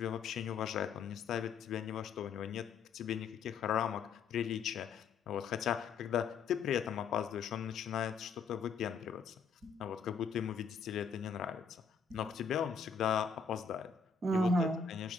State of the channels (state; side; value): quieter; right; 5.7 dB